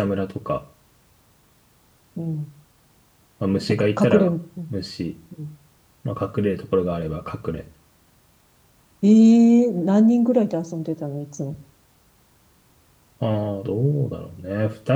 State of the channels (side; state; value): both; identical; correlation 1.00